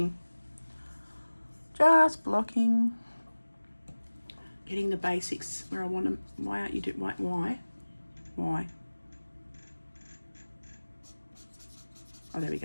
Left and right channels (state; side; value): inverted; both; correlation -1.00